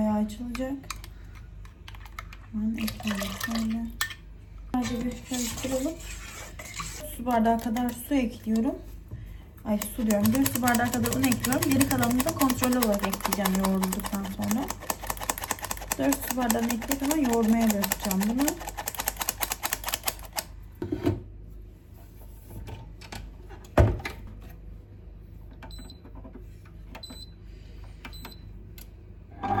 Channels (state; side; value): identical; both; correlation 1.00